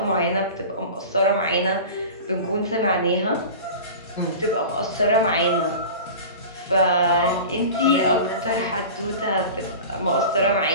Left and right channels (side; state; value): both; inverted; correlation -0.34